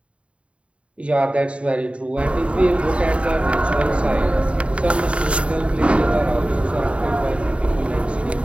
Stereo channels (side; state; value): left; late; 0.060 ms